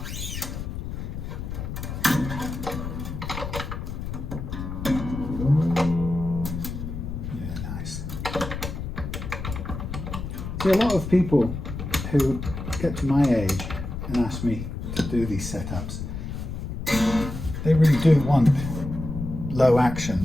See, a lot of people who get to my age and ask me to do these setups, they really do want low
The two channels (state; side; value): noise; left; rumble, 6 dB below the sound